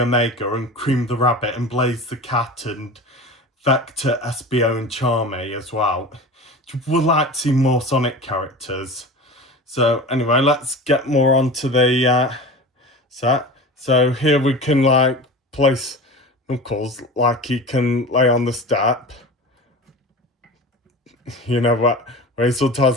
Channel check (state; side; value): normal; both; correlation 0.33